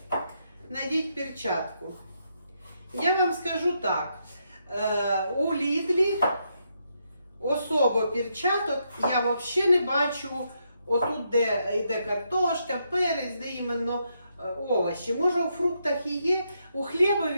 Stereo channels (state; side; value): inverted; both; correlation -0.79